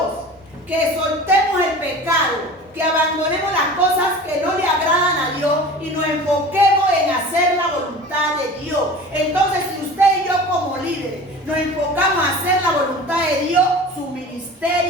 que soltemos el pecado, que abandonemos las cosas que no le agradan a Dios y nos enfoquemos en hacer la voluntad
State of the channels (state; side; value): normal; both; correlation 0.38